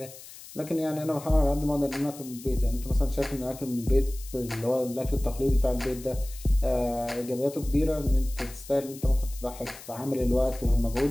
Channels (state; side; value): noise; left; hiss, 17 dB below the sound